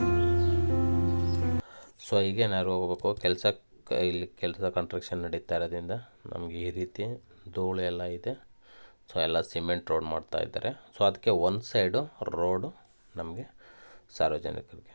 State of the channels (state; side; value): inverted; both; correlation -1.00